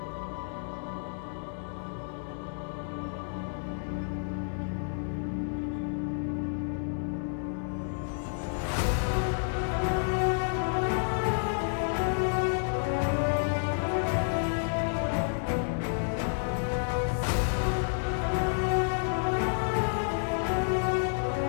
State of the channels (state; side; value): silent; right; 58 dB below the other